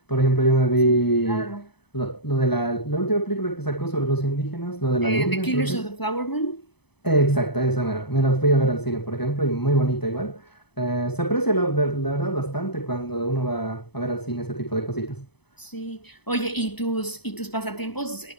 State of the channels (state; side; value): late; right; 0.98 ms